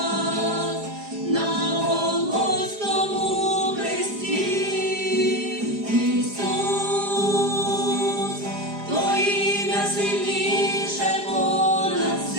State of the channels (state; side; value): late; left; 4.9 ms